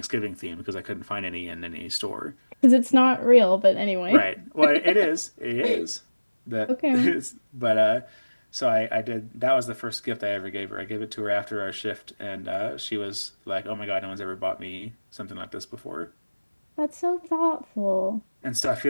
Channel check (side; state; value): both; inverted; correlation -1.00